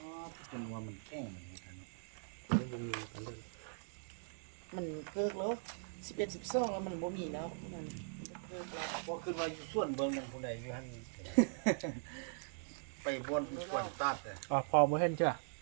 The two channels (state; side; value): silent; left; digital silence